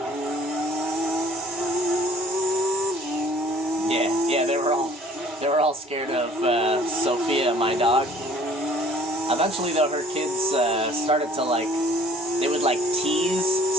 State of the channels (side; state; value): both; normal; correlation 0.53